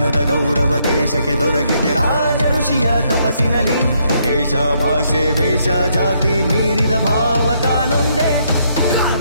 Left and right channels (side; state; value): both; inverted; correlation -0.73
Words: ಗೌರವ ದೇಶಕ್ಕೆ ದೊರಕಿದೆ ರಾಜ ಋಷಿಯ ತಪಸ್ಸಿನಲ್ಲಿ ದೇಶ ಭಾಷೆ ವೇಷ ಜಾತಿ ಮೀರಿದ ಭಾವ ತಾನೊಂದೇ पुकार